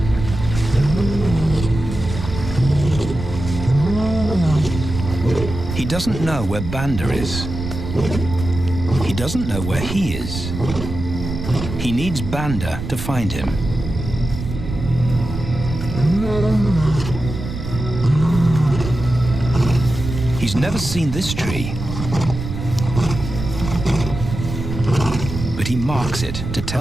doesn't know where Banda is. He doesn't know where he is. He needs Banda to find him. He's never seen this tree, but he marks it to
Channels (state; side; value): noise; right; rumble, 7 dB below the sound